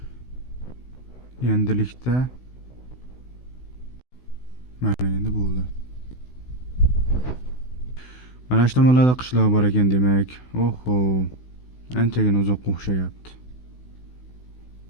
Endilikda mana endi bo'ldi. Mana shu tomonlarda qishloq bor ekan demak. Oho, anchagina uzoqqa o'xshayapti.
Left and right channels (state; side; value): late; right; 16 ms